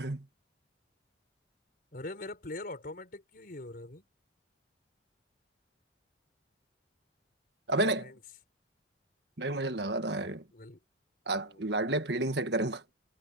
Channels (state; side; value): normal; both; correlation 0.02